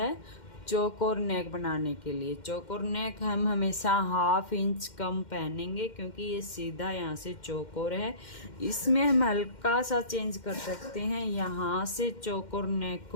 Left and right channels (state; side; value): late; right; 2.1 ms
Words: चौकोर नेक बनाने के लिए। चौकोर नेक हम हमेशा 1/2 इंच कम पहनेंगे क्योंकि ये सीधा यहाँ से चौकोर है। इसमें हम हल्का सा चेंज कर सकते हैं, यहाँ से चौकोर नेक